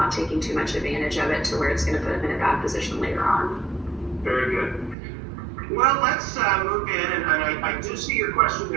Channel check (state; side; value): drops out; left; at 5.0 s